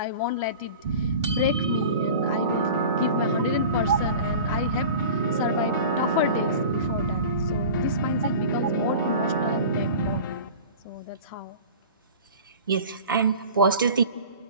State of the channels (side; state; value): both; inverted; correlation -0.37